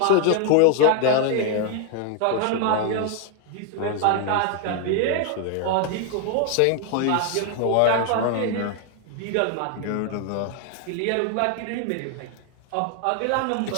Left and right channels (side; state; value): both; different; correlation 0.01